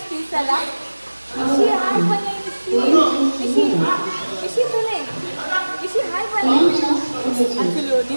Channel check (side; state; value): both; inverted; correlation -1.00